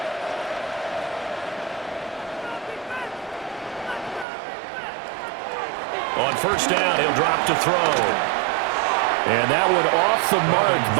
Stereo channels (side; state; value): left; drops out; at 4.2 s